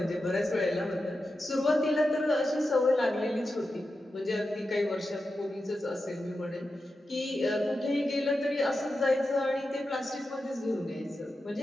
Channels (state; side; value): normal; both; correlation 0.90